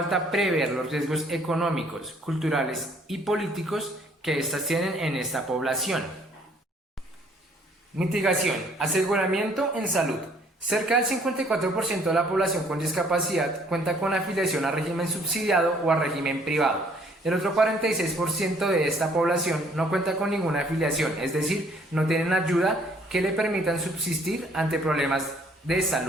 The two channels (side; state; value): both; normal; correlation 0.61